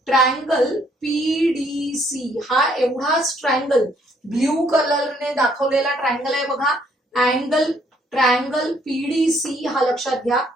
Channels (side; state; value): both; normal; correlation 0.67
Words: ट्रायंगल पीडीसी, हा एवढाच ट्रायंगल ब्ल्यू कलरने दाखवलेला ट्रायंगल आहे. बघा, ट्रायंगल पीडीसी हा लक्षात घ्या.